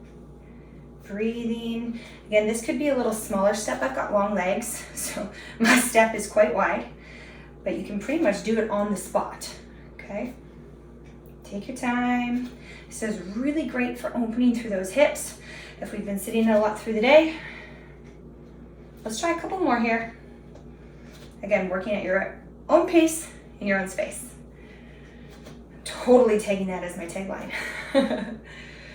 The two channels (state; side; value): identical; both; correlation 1.00